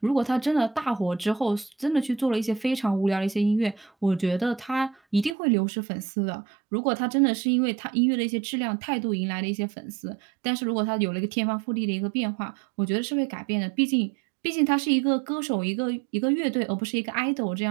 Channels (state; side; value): drops out; left; at 5.4 s